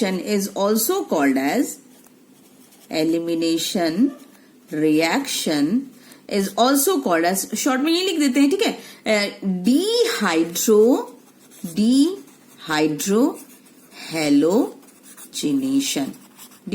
is also called as, elimination reaction is also called as, short में ये लिख देते हैं। ठीक है, dehydrohalogenation,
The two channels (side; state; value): both; identical; correlation 1.00